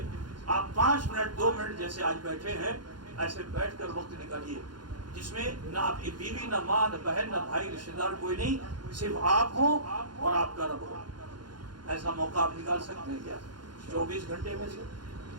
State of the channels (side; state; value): left; late; 0.71 ms